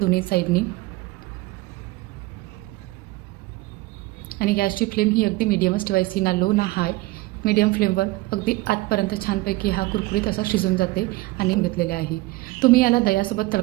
साईडनी आणि गॅसची फ्लेम ही अगदी मीडियमच ठेवायची, ना लो ना हाय, मीडियम फ्लेमवर अगदी आतपर्यंत छानपैकी हा कुरकुरीत असा शिजून जाते आणि घेतलेले आहे। तुम्ही याला दह्यासोबत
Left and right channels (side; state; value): left; quieter; 20.1 dB